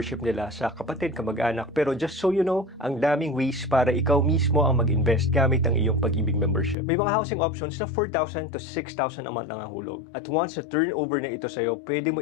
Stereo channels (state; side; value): drops out; right; at 6.8 s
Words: nila sa kapatid, kamag-anak. Pero just so you know, ang daming ways para ikaw mismo ang mag-invest gamit ang iyong Pag-ibig membership. May mga housing options na 4,000 to 6,000 a month lang ang hulog. At once na turnover na ito sa'yo, pwede mo